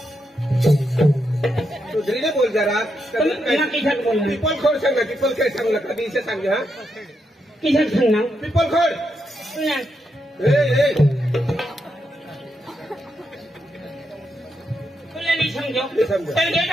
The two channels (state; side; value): normal; both; correlation 0.82